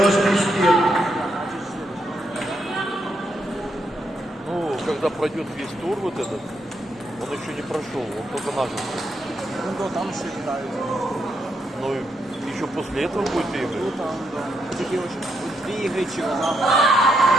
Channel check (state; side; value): normal; both; correlation 0.79